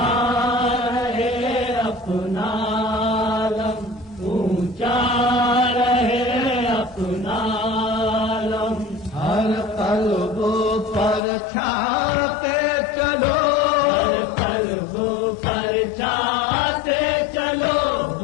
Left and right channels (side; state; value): right; drops out; at 11.2 s